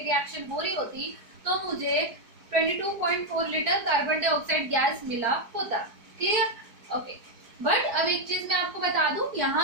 रिएक्शन हो रही होती तो मुझे 22.4 लीटर कार्बन डाइऑक्साइड गैस मिला होता। क्लियर? ओके। बट अब एक चीज मैं आपको बता दूं,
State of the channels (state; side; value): late; left; 4.7 ms